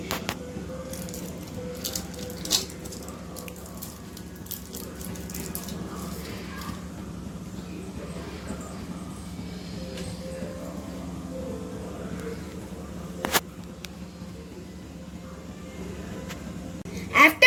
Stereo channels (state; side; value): identical; both; correlation 1.00